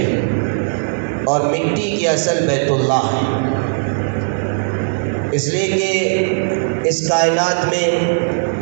اور مٹی کی اصل بیت اللہ ہے، اس لیے کہ اس کائنات میں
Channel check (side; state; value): left; silent; digital silence